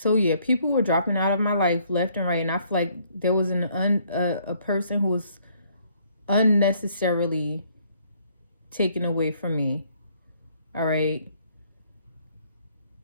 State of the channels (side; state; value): both; inverted; correlation -0.65